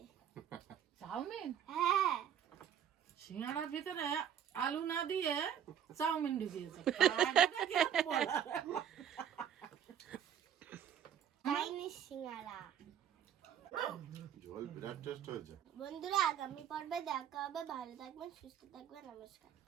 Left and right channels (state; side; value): quieter; left; 9.3 dB